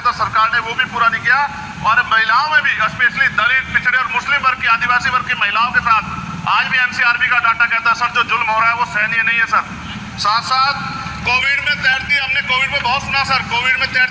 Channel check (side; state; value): both; identical; correlation 1.00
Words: था सरकार ने वो भी पूरा नहीं किया। और महिलाओं में भी, स्पेशली दलित, पिछड़े और मुस्लिम वर्ग की, आदिवासी वर्ग की महिलाओं के साथ आज भी NCRB का डाटा कहता है सर जो जुल्म हो रहा है वो सहनीय नहीं है सर। साथ साथ कोविड में तैरती, हमने कोविड में बहुत सुना सर, कोविड में